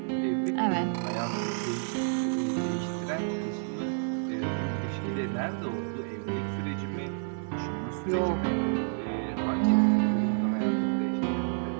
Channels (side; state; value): left; silent; 58 dB below the other